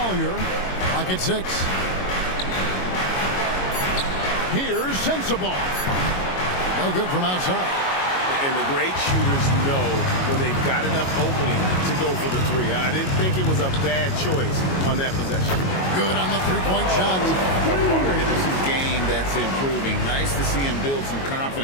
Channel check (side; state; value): right; late; 22 ms